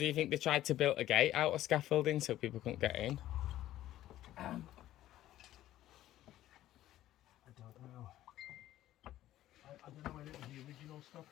you think they tried to build a gate out of scaffolding so people couldn't get in? I don't know. I don't know whether it was the original stuff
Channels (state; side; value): quieter; right; 13.8 dB